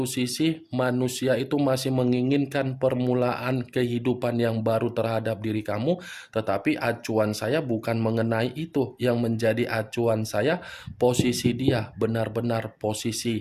sisi manusia itu masih menginginkan permulaan kehidupan yang baru terhadap diri kamu, tetapi acuan saya bukan mengenai itu. Yang menjadi acuan saya, posisi dia benar-benar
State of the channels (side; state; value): both; identical; correlation 1.00